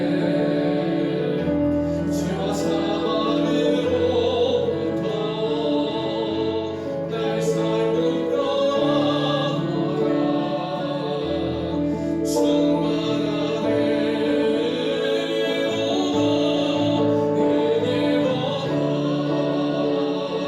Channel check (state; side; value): identical; both; correlation 1.00